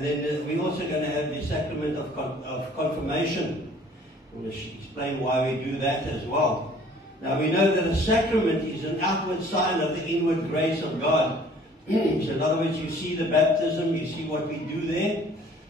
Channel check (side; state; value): both; normal; correlation 0.54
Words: then we're also going to have the sacrament of confirmation. I want to explain why we do that as well. Now we know that a sacrament is an outward sign of the inward grace of God. So in other words, you see the baptism, you see what we do there.